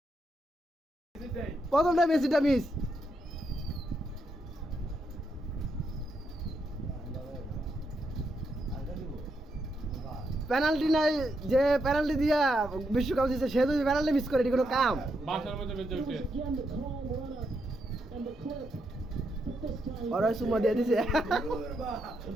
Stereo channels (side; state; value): both; normal; correlation 0.81